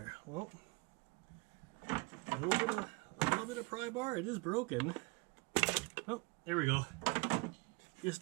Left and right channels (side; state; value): left; quieter; 28.7 dB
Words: Well, a little bit of pry bar. It is broken. Oh, there we go. Just